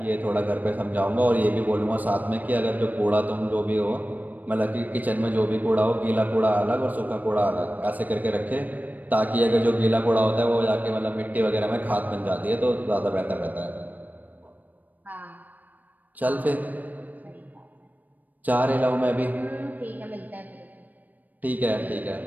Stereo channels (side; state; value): left; late; 0.082 ms